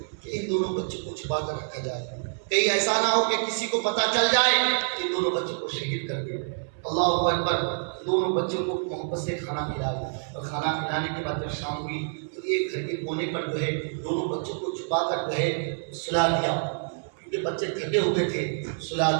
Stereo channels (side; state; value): left; silent; 60 dB below the other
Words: کہ ان دونوں بچوں کو چھپا کر رکھا جائے، کہیں ایسا نہ ہو کہ کسی کو پتہ چل جائے کہ ان دونوں بچوں کو شہید کر دے۔ اللہ اکبر۔ دونوں بچوں کو محبت سے کھانا کھلایا، اور کھانا کھلانے کے بعد جب شام ہوئی تو ایک گھر کے کونے پر جو ہے دونوں بچوں کو چھپا کر جو ہے سلا دیا، کیونکہ بچے تھکے ہوئے تھے، سلا